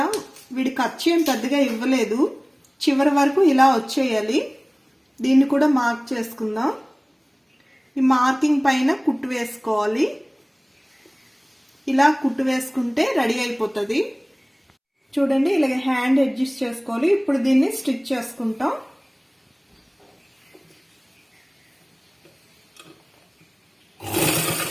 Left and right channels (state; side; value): identical; both; correlation 1.00